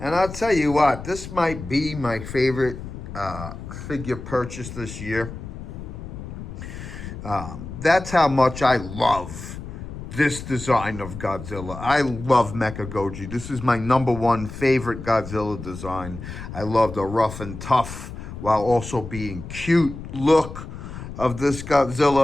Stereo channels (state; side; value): noise; left; rumble, 10 dB below the sound